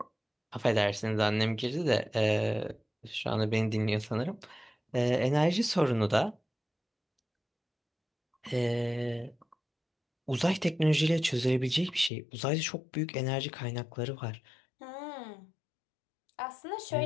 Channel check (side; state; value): right; drops out; at 12.1 s